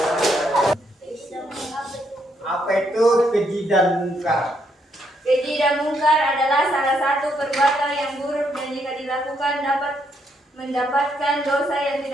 Apa itu keji dan mungkar? Keji dan mungkar adalah salah satu perbuatan yang buruk dan jika dilakukan dapat mendapatkan dosa yang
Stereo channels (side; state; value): both; normal; correlation 0.75